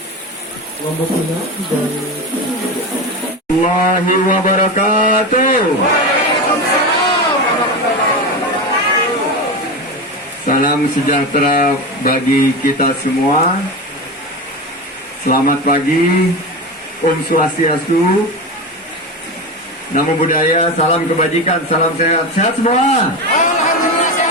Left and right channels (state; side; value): normal; both; correlation 0.21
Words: Lombok Tengah dan Allahi wabarakatuh. Salam sejahtera bagi kita semua. Selamat pagi, Om Swastiastu, Namo Buddhaya, salam kebajikan, salam sehat. Sehat semua?